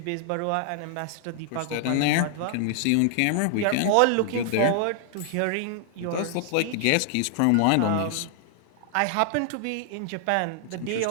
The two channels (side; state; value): both; different; correlation 0.00